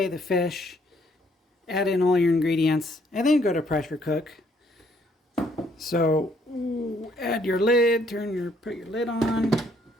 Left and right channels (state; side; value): normal; both; correlation 0.67